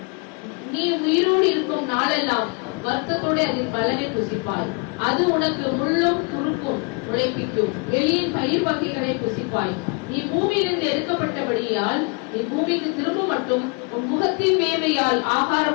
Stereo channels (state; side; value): quieter; right; 34.1 dB